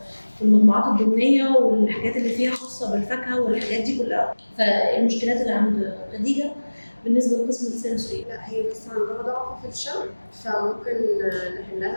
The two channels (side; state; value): both; inverted; correlation -1.00